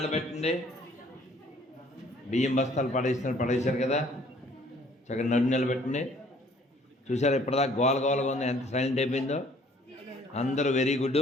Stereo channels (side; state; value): both; normal; correlation 0.58